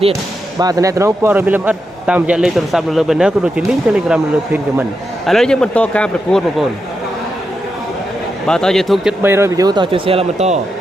ទៀតបាទតំណែងព័ត៌មានលម្អិតតាមរយៈលេខទូរស័ព្ទនៅលើ banner ក៏ដូចជា link Telegram នៅលើ pin comment ឥឡូវយើងបន្តការប្រកួតបងប្អូនបាទតើ YouTube ជិត300 view តើជួយ share ឡើងបន្ត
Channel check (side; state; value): both; normal; correlation 0.86